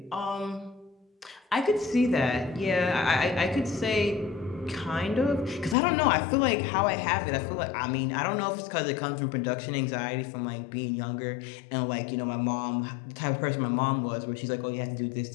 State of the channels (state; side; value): drops out; right; at 5.8 s